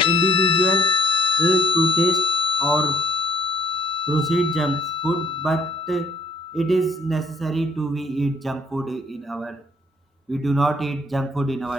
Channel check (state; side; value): normal; both; correlation 0.61